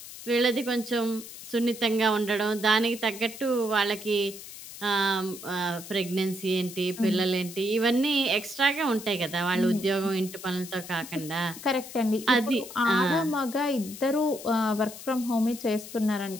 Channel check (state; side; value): noise; left; hiss, 13 dB below the sound